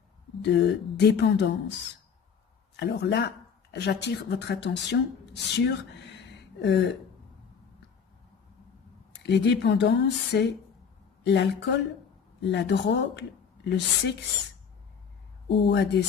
dépendance. Alors là, j'attire votre attention sur les dépendances, c'est l'alcool, la drogue, le sexe ou à des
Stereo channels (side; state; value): right; quieter; 6.7 dB